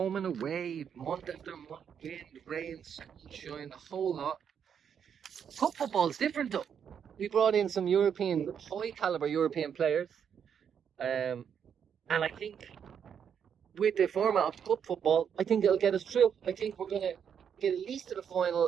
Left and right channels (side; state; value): left; quieter; 7.8 dB